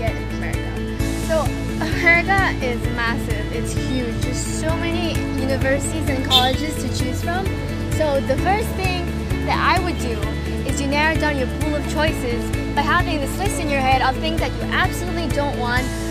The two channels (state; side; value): identical; both; correlation 1.00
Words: in America. So America is massive, it's huge. There's so many universities and colleges to choose from. So the first thing that I would do is you narrow down your pool of choices by having this list in your head of things that you absolutely don't want